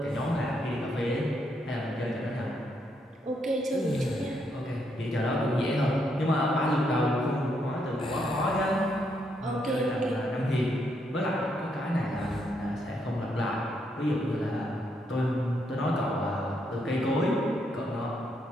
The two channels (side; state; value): both; normal; correlation 0.76